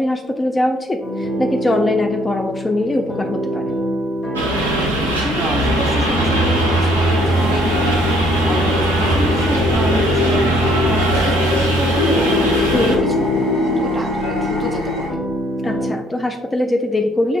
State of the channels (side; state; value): both; normal; correlation 0.64